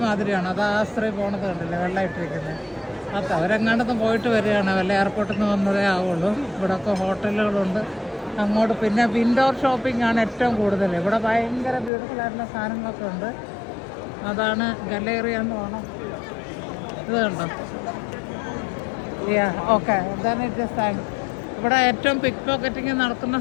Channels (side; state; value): right; drops out; at 11.9 s